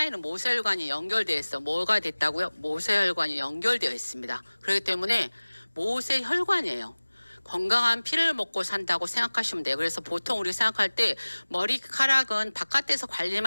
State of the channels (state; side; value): inverted; both; correlation -1.00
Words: 모세혈관이 연결되어 있어. 뭐가 됐다고요? 모세혈관이 연결되어 있습니다. 그렇기 때문에 모세혈관이에요. 건강한 피를 먹고 산다고 생각하시면 돼요. 그래서 보통 우리 생각할 때 머리카락은 바깥에서